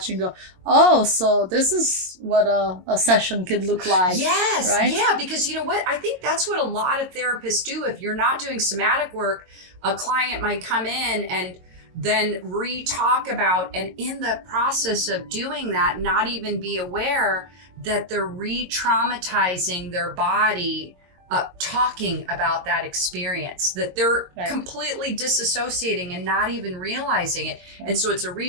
and go, oh, so this is what a session could look like. Yes. Right? Yeah. Because you know what? I think that's what a lot of therapists do. If you're not doing somatic work, a client might come in and then re-talk about, and in the process of doing that, not even be aware that they're re-traumatizing their body talking about that experience, that they're Right. completely disassociating and not even realizing it. And so it's a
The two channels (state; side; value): late; left; 22 ms